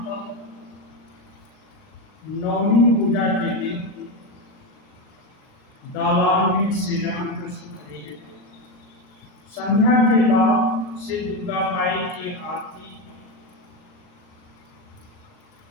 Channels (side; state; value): right; late; 39 ms